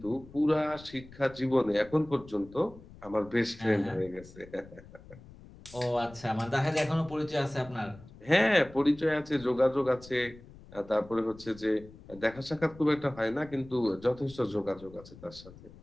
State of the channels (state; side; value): noise; left; rumble, 20 dB below the sound